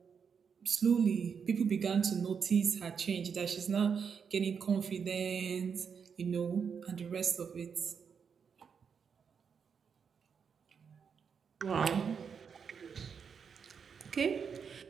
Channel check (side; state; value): left; quieter; 6.5 dB